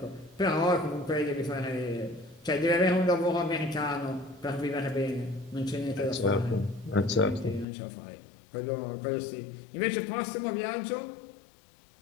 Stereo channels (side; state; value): right; drops out; at 7.7 s